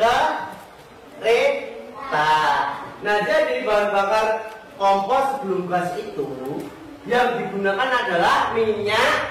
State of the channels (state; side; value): identical; both; correlation 1.00